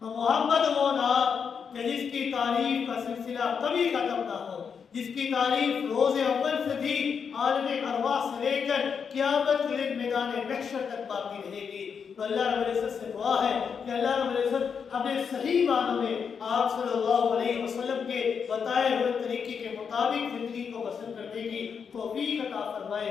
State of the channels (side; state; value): right; quieter; 6.5 dB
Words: تو محمد وہ نام کہ جس کی تعریف کا سلسلہ کبھی ختم نہ ہو، جس کی تعریف روز اول سے بھی عالم ارواح سے لے کر قیامت کے دن میدان محشر تک باقی رہے گی. تو اللہ رب العزت سے دعا ہے کہ اللہ رب العزت اپنے صحیح معنوں میں آپ صلی اللہ علیہ وسلم کے بتائے ہوئے طریقے کے مطابق زندگی کو بسر کرنے کی توفیق عطا